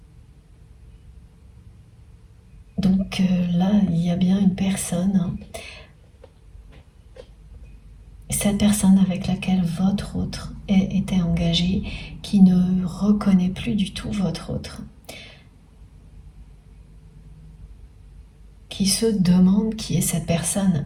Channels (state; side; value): identical; both; correlation 1.00